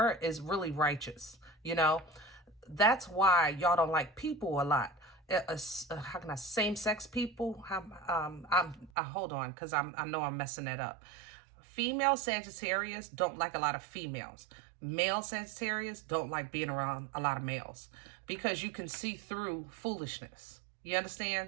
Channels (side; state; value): left; drops out; at 8.9 s